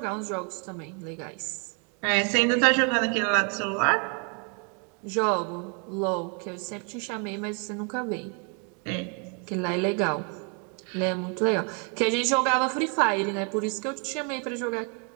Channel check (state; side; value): quieter; left; 37.1 dB